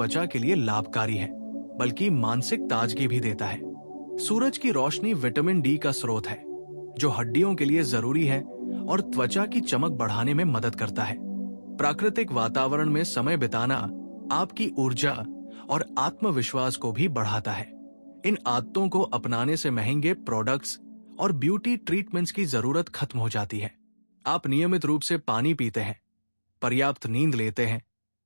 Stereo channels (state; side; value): inverted; both; correlation -1.00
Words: के लिए लाभकारी है बल्कि मानसिक ताजगी भी देता है। सूरज की रोशनी विटामिन डी का स्रोत है जो हड्डियों के लिए जरूरी है और त्वचा की चमक बढ़ाने में मदद करता है। प्राकृतिक वातावरण में समय बिताना आपकी ऊर्जा और आत्मविश्वास को भी बढ़ाता है। इन आदतों को अपनाने से महंगे प्रोडक्ट्स और ब्यूटी ट्रीटमेंट्स की जरूरत खत्म हो जाती है। आप नियमित रूप से पानी पीते हैं, पर्याप्त नींद लेते हैं,